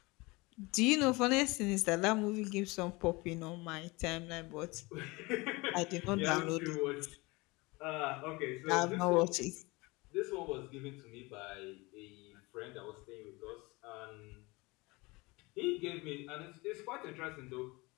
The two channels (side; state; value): right; quieter; 24.2 dB